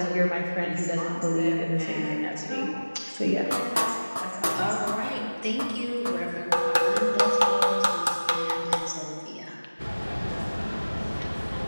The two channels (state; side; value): inverted; both; correlation -1.00